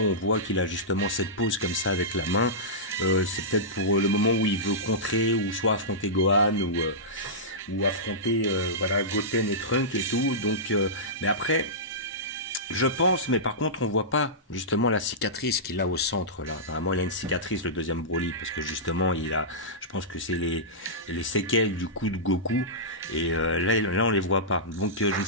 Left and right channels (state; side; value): normal; both; correlation -0.15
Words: on voit qu'il a justement cette pose comme ça avec la main. C'est peut-être pour le moment où il veut contrer ou soit affronter Gohan ou affronter voilà Goten et Trunk et tout. Donc, mais après, je pense, mais par contre, on voit pas justement la cicatrice qu'il a au centre là. Vraiment, il a une cicatrice le deuxième Broly parce que justement, il a, je pense que c'est les séquelles du coup de Goku et là, on les voit pas. Donc, je ne